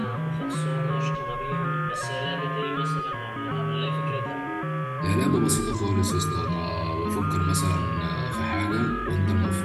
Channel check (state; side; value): identical; both; correlation 1.00